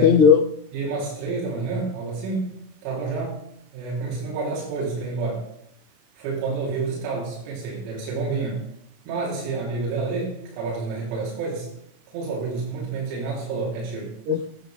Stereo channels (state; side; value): late; left; 26 ms